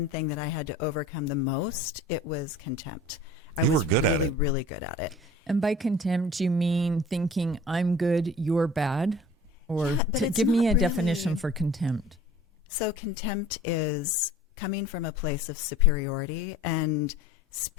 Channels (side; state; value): both; normal; correlation 0.45